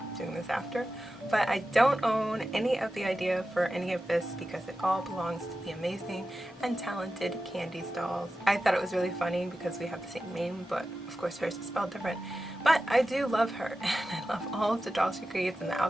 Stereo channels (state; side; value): normal; both; correlation 0.93